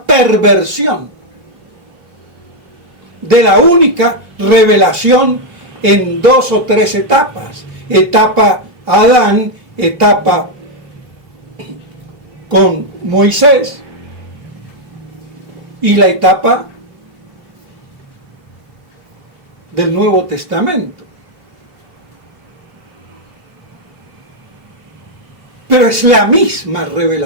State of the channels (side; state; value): left; late; 2.8 ms